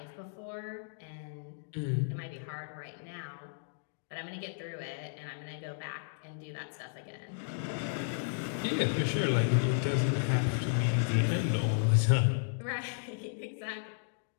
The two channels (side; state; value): right; silent; digital silence